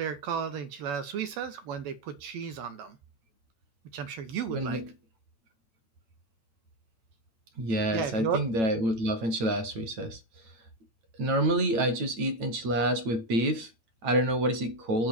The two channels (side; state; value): left; late; 9.0 ms